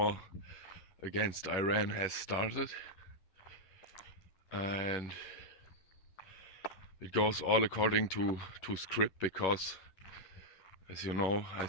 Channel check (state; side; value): late; right; 11 ms